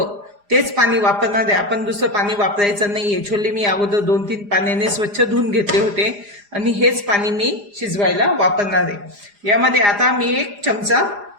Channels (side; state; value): left; late; 4.9 ms